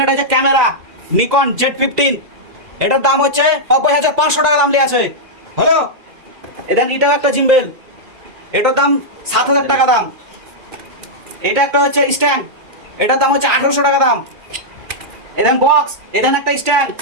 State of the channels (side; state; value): left; late; 2.4 ms